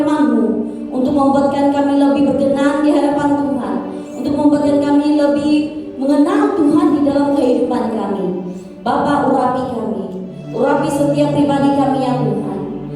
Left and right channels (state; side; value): identical; both; correlation 1.00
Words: untuk membuatkan kami lebih berkenan di hadapan Tuhan, untuk membuatkan kami lebih mengenal Tuhan di dalam kehidupan kami. Bapa, urapi setiap pribadi kami ya Tuhan.